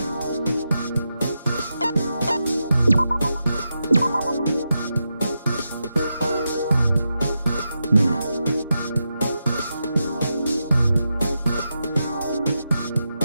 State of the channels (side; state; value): both; inverted; correlation -0.87